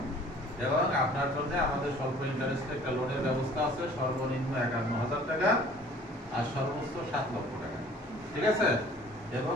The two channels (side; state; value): both; normal; correlation 0.52